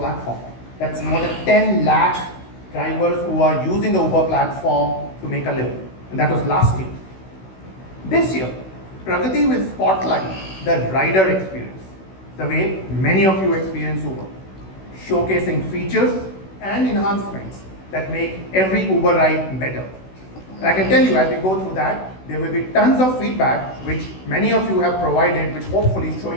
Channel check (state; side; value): late; right; 16 ms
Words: That's more than 10 lakh drivers who are using the Uber platform to make a living. And that was last year. This year, Pragati will spotlight the rider experience, the way many of you experience Uber, showcasing features and enhancements that make every Uber ride better. And I can tell you, as we go through that, there will be tons of feedback which many of you have provided, which hopefully is